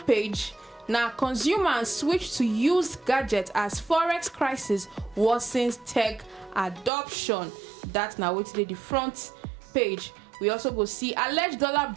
page now, consumers switch to used gadgets as forex crisis worsens tech adoption. That's now waiting there the front page. We also go see alleged dollar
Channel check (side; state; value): left; drops out; at 6.9 s